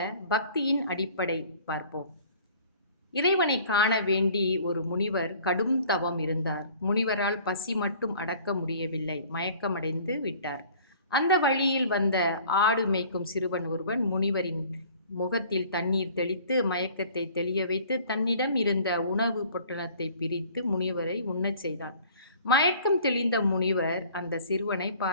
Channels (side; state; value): both; inverted; correlation -0.51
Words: பக்தியின் அடிப்படை பார்ப்போம். இறைவனை காண வேண்டி ஒரு முனிவர் கடும் தவம் இருந்தார். முனிவரால் பசி மட்டும் அடக்க முடியவில்லை, மயக்கமடைந்து விட்டார். அந்த வழியில் வந்த ஆடு மேய்க்கும் சிறுவன் ஒருவன் முனிவரின் முகத்தில் தண்ணீர் தெளித்து மயக்கத்தை தெளிய வைத்து தன்னிடம் இருந்த உணவு பொட்டலத்தை பிரித்து முனிவரை உண்ணச் செய்தான். மயக்கம் தெளிந்த முனிவர் அந்த சிறுவனை